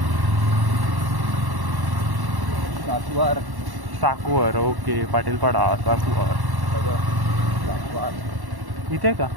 साकवर. ओके पाटीलपाडा साकवर. इथे का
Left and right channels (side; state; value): left; late; 1.1 ms